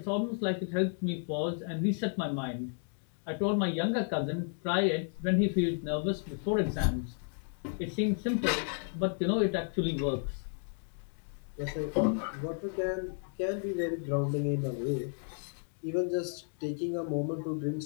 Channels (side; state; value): right; silent; 56 dB below the other